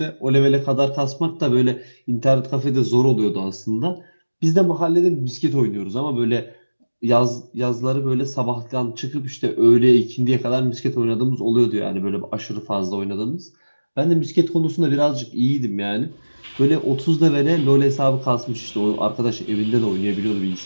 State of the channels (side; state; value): both; inverted; correlation -1.00